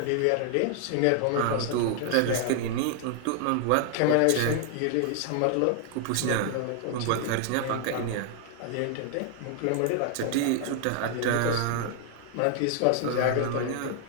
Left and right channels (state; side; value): different; both; correlation 0.00